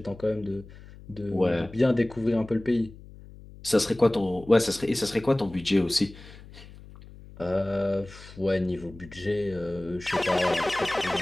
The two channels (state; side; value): noise; left; hum, 19 dB below the sound